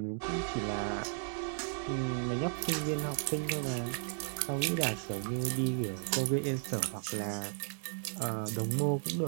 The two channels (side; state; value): left; silent; 55 dB below the other